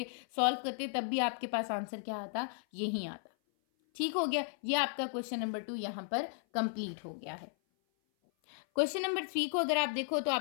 सॉल्व करते, तब भी आपके पास आंसर क्या आता, यही आता। ठीक हो गया, ये आपका क्वेश्चन नंबर 2 यहाँ पर कंप्लीट हो गया है। क्वेश्चन नंबर 3 को अगर आप देखो तो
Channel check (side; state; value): right; silent; 54 dB below the other